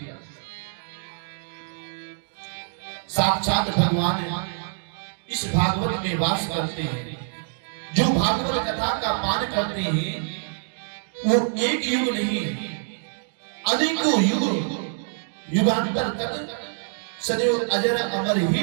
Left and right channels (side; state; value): left; silent; digital silence